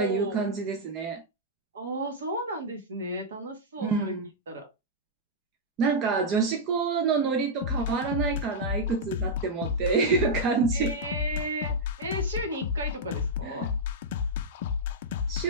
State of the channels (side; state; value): both; normal; correlation -0.06